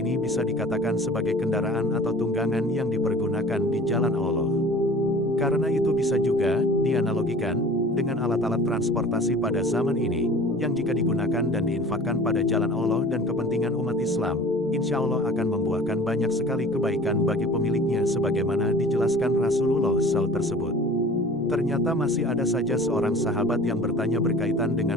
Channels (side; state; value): both; normal; correlation 0.43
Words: bisa dikatakan sebagai kendaraan atau tunggangan yang dipergunakan di jalan Allah. Karena itu bisa juga dianalogikan dengan alat-alat transportasi pada zaman ini, yang jika digunakan dan diinfakkan pada jalan Allah dan kepentingan umat Islam, insya Allah akan membuahkan banyak sekali kebaikan bagi pemiliknya sebagaimana dijelaskan Rasulullah SAW tersebut. Ternyata masih ada saja seorang sahabat yang bertanya berkaitan